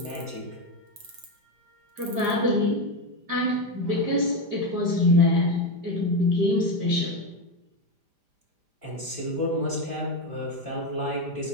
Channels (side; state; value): left; late; 5.0 ms